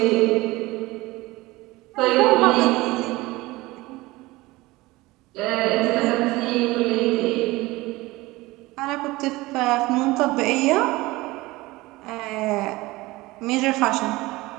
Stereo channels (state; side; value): quieter; left; 20.3 dB